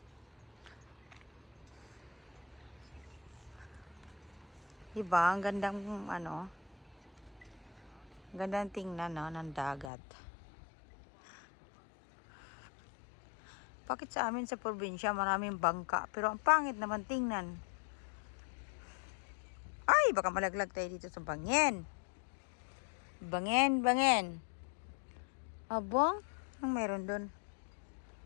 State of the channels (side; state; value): right; drops out; at 9.9 s